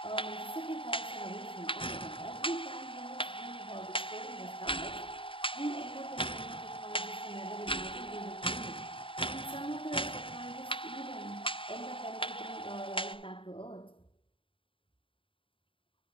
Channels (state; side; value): late; right; 0.25 ms